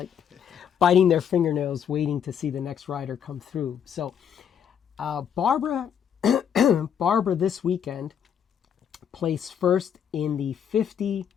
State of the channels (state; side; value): quieter; right; 8.3 dB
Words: biting their fingernails waiting to see the next rider come through. So Barbara this weekend placed first in the 50